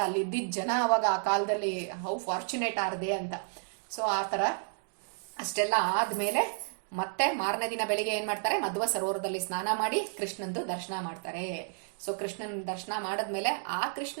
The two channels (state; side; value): silent; left; 57 dB below the other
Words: ಅಲ್ಲಿ ಇದ್ದಿದ್ದ ಜನ ಅವಾಗ ಆ ಕಾಲದಲ್ಲಿ ಹೌ ಫಾರ್ಚುನೇಟ್ ಆರ್ದೆ ಅಂತ. ಸೊ ಆ ಥರ ಅಷ್ಟೆಲ್ಲ ಆದ್ಮೇಲೆ ಮತ್ತೆ ಮಾರನೇ ದಿನ ಬೆಳಿಗ್ಗೆ ಏನ್ ಮಾಡ್ತಾರೆ, ಮಧ್ವ ಸರೋವರದಲ್ಲಿ ಸ್ನಾನ ಮಾಡಿ ಕೃಷ್ಣಂದು ದರ್ಶನ ಮಾಡ್ತಾರೆ. ಸೊ ಕೃಷ್ಣನ್ ದರ್ಶನ ಮಾಡದ್ಮೇಲೆ ಆ ಕೃಷ್ಣ